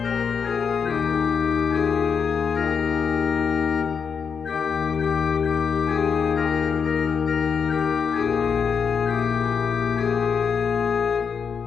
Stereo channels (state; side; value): quieter; right; 6.3 dB